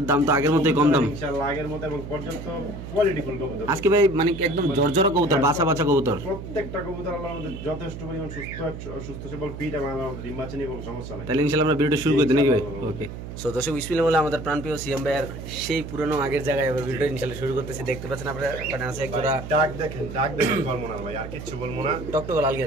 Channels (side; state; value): right; noise; hum, 10 dB below the sound